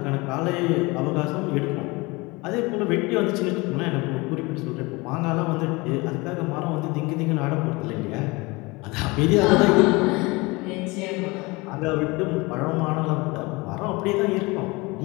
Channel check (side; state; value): right; quieter; 24.5 dB